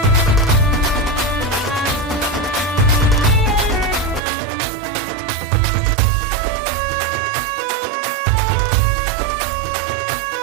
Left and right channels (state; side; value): drops out; left; at 4.2 s